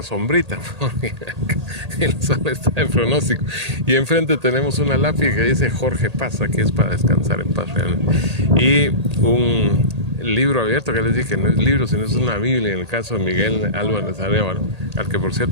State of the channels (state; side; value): late; left; 1.8 ms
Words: sombrita, porque el sol está de pronóstico. Y enfrente tenemos una lápiz que dice Jorge Paz, aquí es para descansar en paz realmente. Y un libro abierto que les dije, no es libro, sino es una Biblia, en el caso de Miguel Álvarez Arévalo, al que por